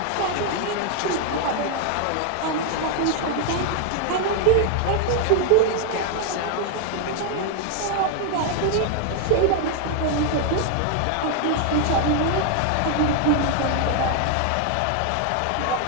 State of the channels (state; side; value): different; both; correlation 0.00